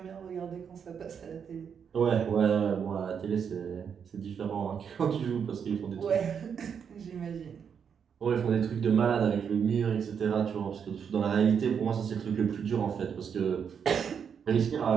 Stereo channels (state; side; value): quieter; left; 7.2 dB